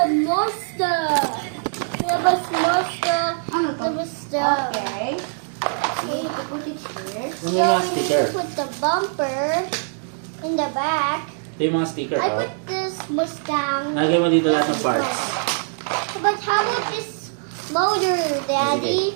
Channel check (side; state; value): left; silent; digital silence